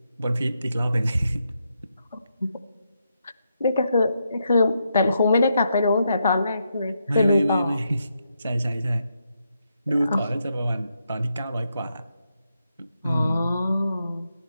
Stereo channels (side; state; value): both; inverted; correlation -0.82